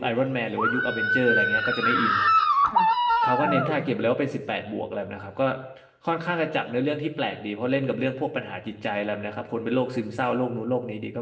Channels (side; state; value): both; identical; correlation 1.00